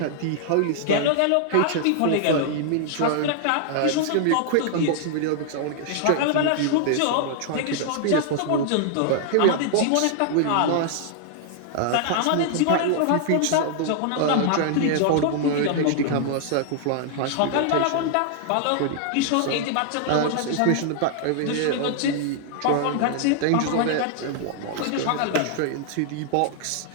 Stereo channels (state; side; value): different; both; correlation -0.01